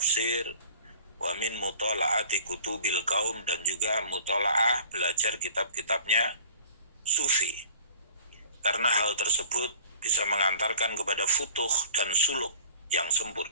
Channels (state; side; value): inverted; both; correlation -0.47